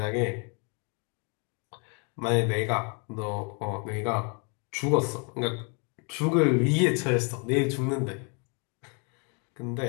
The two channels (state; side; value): quieter; right; 36.5 dB